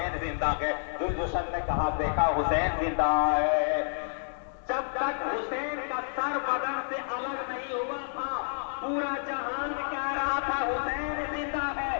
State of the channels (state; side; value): silent; right; digital silence